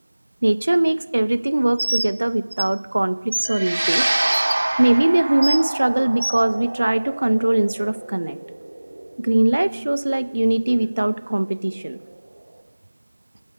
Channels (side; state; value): both; inverted; correlation -1.00